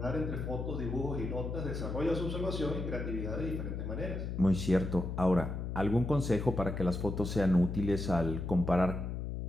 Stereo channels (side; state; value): left; noise; hum, 4 dB below the sound